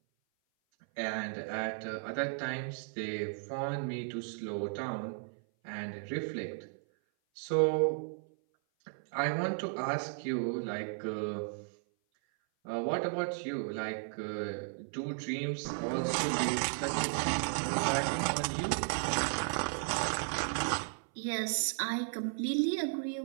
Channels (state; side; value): silent; left; 55 dB below the other